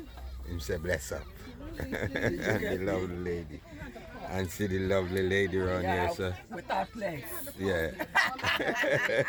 Him say bless up. And the lovely lady. And see the lovely lady around here, so. With our place. Yeah.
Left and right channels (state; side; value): identical; both; correlation 1.00